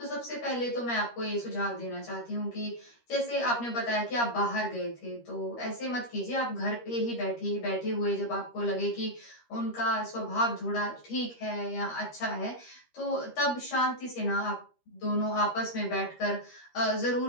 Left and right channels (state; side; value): late; right; 13 ms